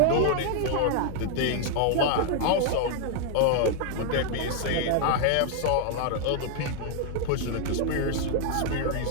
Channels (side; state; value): both; different; correlation 0.00